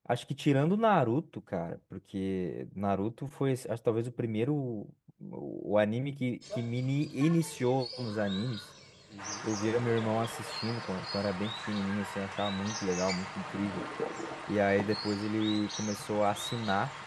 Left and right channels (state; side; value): identical; both; correlation 1.00